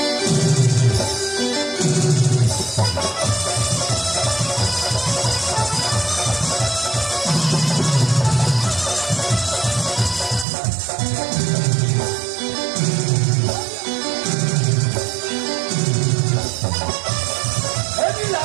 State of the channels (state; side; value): drops out; left; at 10.5 s